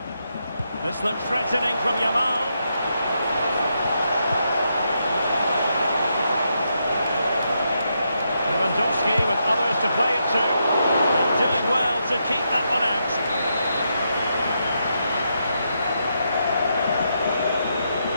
This looks threatening from Yamal. Lewandowski with others to play it to. And doing well to keep that one out.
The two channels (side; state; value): both; inverted; correlation -0.81